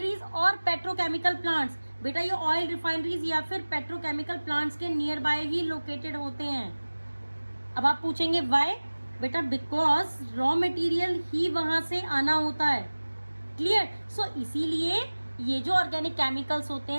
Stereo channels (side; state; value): both; inverted; correlation -1.00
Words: और पेट्रोकेमिकल प्लांट्स. बेटा ये ऑयल रिफाइनरीज या फिर पेट्रोकेमिकल प्लांट्स के नियर बाय ही लोकेटेड होते हैं. अब आप पूछेंगे व्हाई. बेटा बिकॉज रॉ मटेरियल ही वहां से आना होता है. क्लियर. सो इसीलिए ये जो ऑर्गेनिक केमिकल्स होते